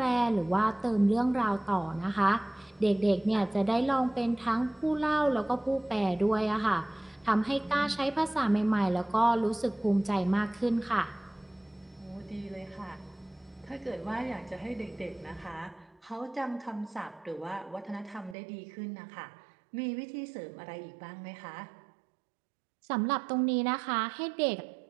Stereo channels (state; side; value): drops out; left; at 18.4 s